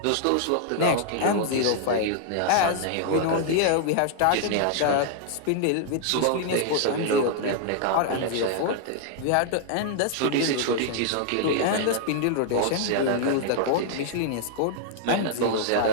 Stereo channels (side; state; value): both; different; correlation -0.01